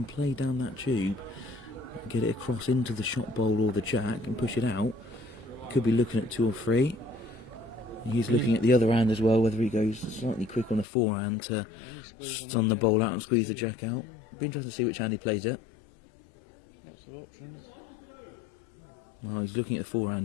play down that tube, get it across into the shot bowl or the Jack and push it out, could be looking at 2 or 3. He's looking at the other hand as well, whether he goes slightly quick on the forehand to Any squeeze on that stun the Jack ball out and makes squeeze 2. the Jack out. Yeah. Be interesting to see which hand he plays it. Lots of options. Well, he's looking at the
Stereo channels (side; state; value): right; drops out; at 10.9 s